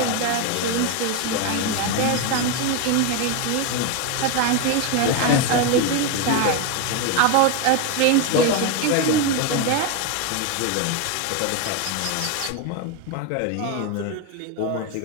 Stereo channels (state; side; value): different; both; correlation 0.02